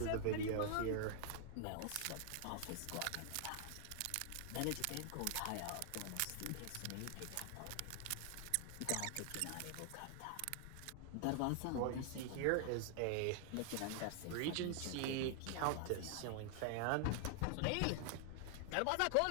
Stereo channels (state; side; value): different; both; correlation 0.00